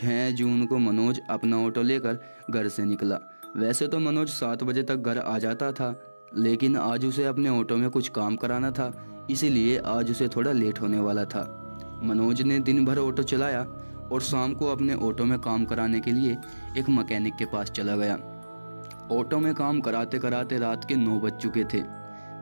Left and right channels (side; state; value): both; inverted; correlation -1.00